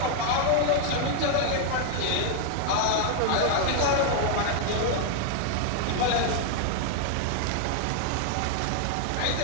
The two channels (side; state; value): both; different; correlation 0.00